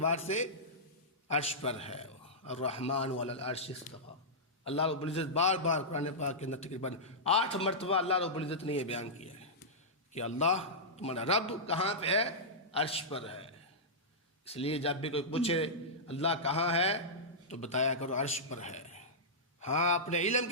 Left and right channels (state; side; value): normal; both; correlation -0.13